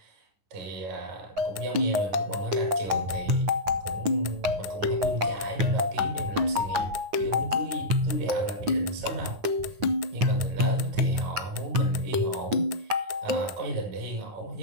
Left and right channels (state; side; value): late; left; 9.5 ms